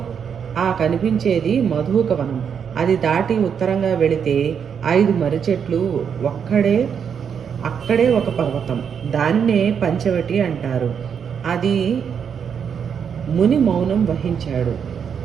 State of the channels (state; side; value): quieter; left; 7.3 dB